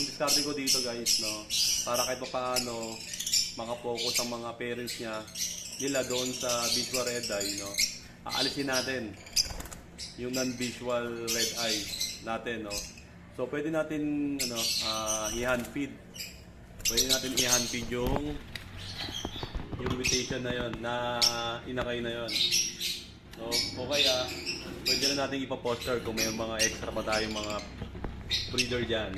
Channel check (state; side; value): identical; both; correlation 1.00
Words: ko dito guys, no, para kahit paano makapokus ang mga parents nila doon sa visual red eye, no, aalisin natin yung non-visual red eye natin, no. So pwede natin i-hand feed. Pwede natin i-hand feed yung mutation na yon, na inakay na yon. No, o kaya pwede na natin ipa-poster kung may mga extra pa tayong mga breeder diyan,